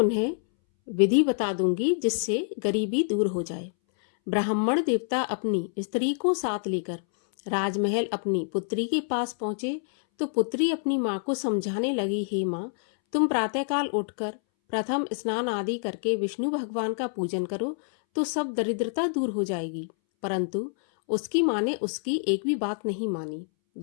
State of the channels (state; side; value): silent; right; 60 dB below the other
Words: विधि बता दूंगी जिससे गरीबी दूर हो जाए। ब्राह्मण देवता अपनी स्त्री को साथ लेकर राजमहल अपनी पुत्री के पास पहुंचे तो पुत्री अपनी माँ को समझाने लगी, हे माँ, तुम प्रातःकाल उठकर प्रथम स्नान आदि करके विष्णु भगवान का पूजन करो तो सब दरिद्रता दूर हो जाएगी। परंतु उसकी माँ ने उसकी एक भी बात नहीं मानी।